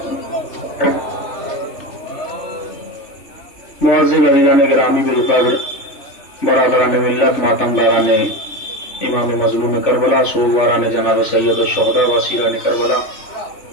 معزز عزیزان گرامی بالقدر، برادران ملت، ماتمداران امام مظلوم کربلا، سوگواران جناب سید الشہداء وسیران کربلا،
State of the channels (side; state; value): right; late; 3.5 ms